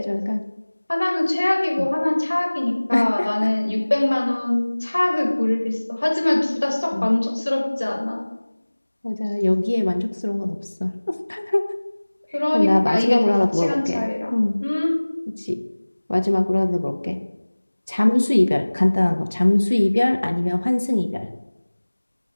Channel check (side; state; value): both; inverted; correlation -1.00